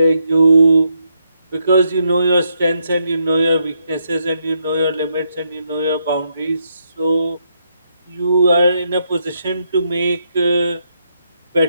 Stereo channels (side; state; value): both; inverted; correlation -0.78